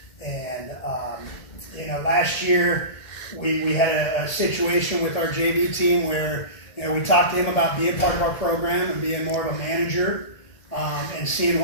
And, last year we had a situation with our JV team where, we talked to him about being part of our program and being more of a manager, and seeing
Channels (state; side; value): late; right; 1.8 ms